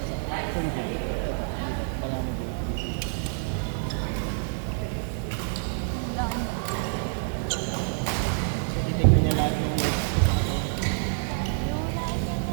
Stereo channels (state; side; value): silent; left; digital silence